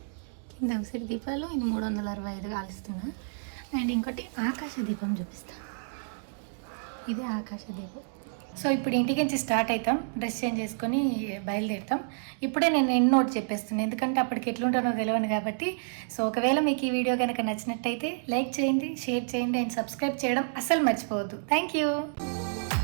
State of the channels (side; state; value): left; silent; digital silence